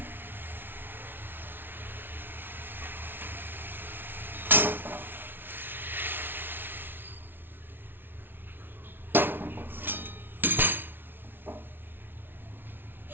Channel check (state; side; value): late; left; 0.10 ms